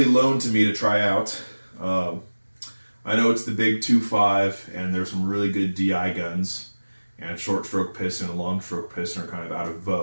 loaned to me to try out. I know it's the big 2.5 and there's some really good DI guns, and short stroke piston and long stroke piston are kind of out of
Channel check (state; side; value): inverted; both; correlation -1.00